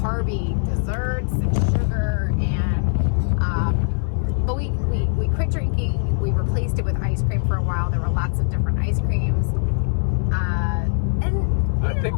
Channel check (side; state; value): right; silent; 65 dB below the other